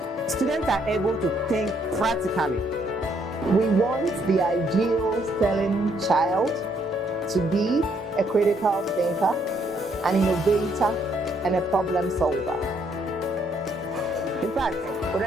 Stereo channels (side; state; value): both; normal; correlation 0.70